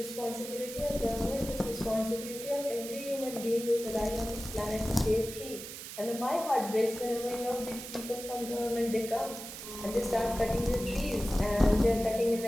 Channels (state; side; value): noise; right; hiss, 10 dB below the sound